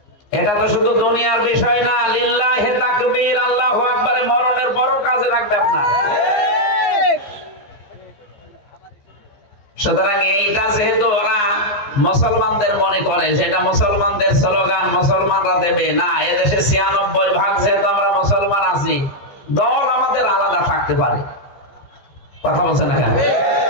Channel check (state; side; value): late; right; 15 ms